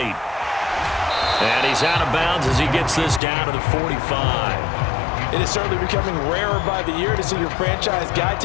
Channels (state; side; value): drops out; right; at 3.2 s